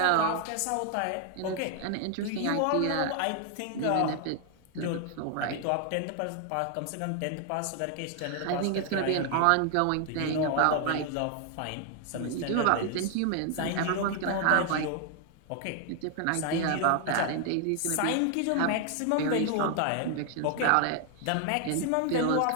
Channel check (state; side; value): different; both; correlation 0.00